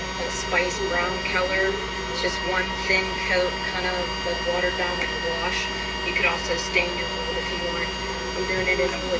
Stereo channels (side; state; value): both; identical; correlation 1.00